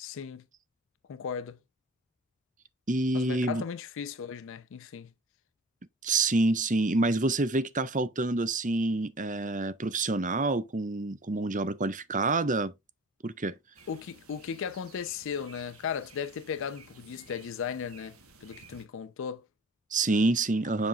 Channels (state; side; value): normal; both; correlation 0.43